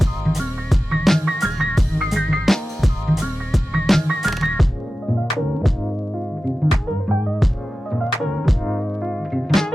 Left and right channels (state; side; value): normal; both; correlation 0.95